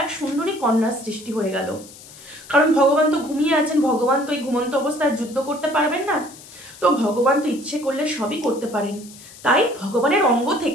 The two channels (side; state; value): left; noise; hiss, 19 dB below the sound